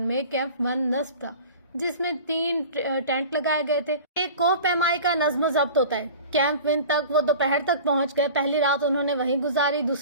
میں کیمپ 1 نصب تھا، جس میں 3 ٹینٹ لگائے گئے تھے۔ ایک کوہ پیمائی کا نظم و ضبط ہوتا ہے۔ کیمپ 1 تک وہ دوپہر تک پہنچ گئے۔ پہلی رات انہوں نے وہیں گزاری،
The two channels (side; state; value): both; inverted; correlation -0.39